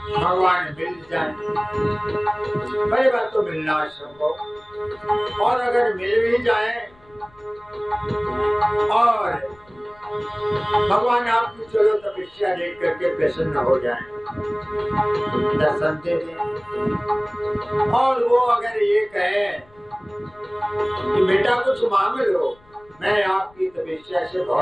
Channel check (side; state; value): left; noise; rumble, 29 dB below the sound